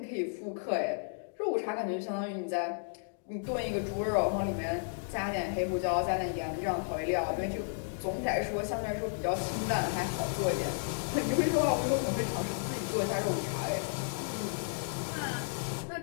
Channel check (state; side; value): silent; right; digital silence